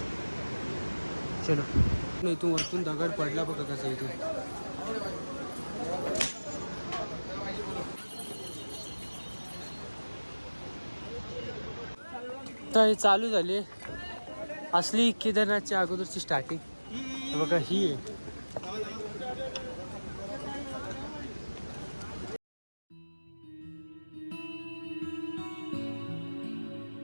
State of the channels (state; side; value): inverted; both; correlation -1.00